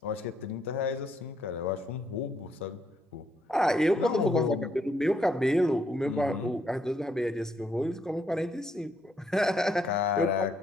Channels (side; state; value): both; normal; correlation 0.73